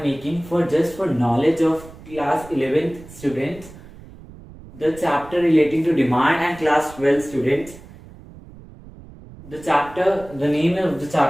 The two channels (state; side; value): noise; right; rumble, 19 dB below the sound